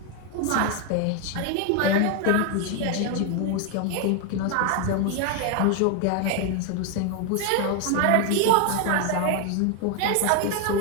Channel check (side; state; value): both; different; correlation 0.01